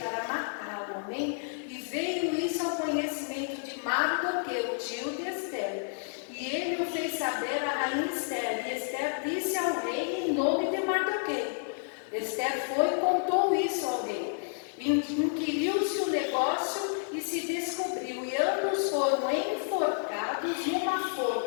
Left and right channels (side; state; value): right; silent; digital silence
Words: matá-lo, amém? E veio isso ao conhecimento de Mardoqueu, tio de Esther. E ele o fez saber a rainha Esther, e Esther disse ao rei em nome de Mardoqueu. Esther foi e contou isso ao rei. Inquiriu-se o negócio e se descobriu, e ambos foram enforcados numa